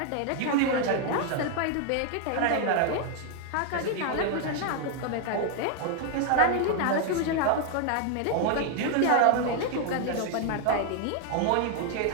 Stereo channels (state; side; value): different; both; correlation 0.00